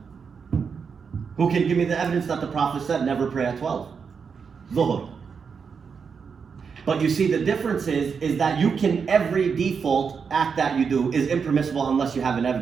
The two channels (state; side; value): quieter; left; 6.0 dB